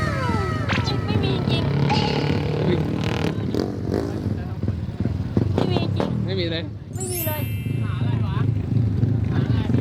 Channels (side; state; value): both; identical; correlation 1.00